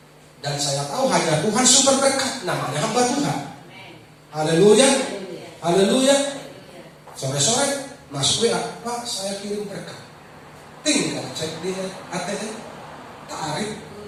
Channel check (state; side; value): identical; both; correlation 1.00